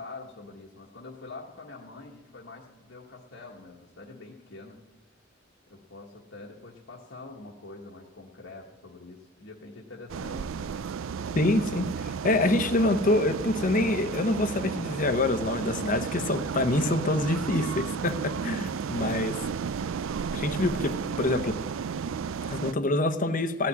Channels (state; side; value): normal; both; correlation 0.39